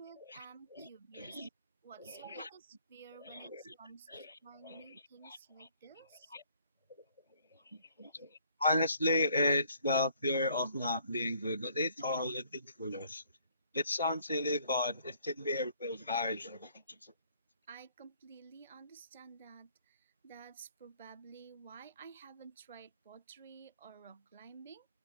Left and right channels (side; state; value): both; inverted; correlation -0.62